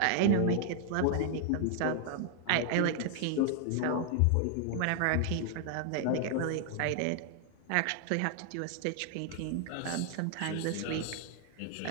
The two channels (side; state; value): both; different; correlation 0.00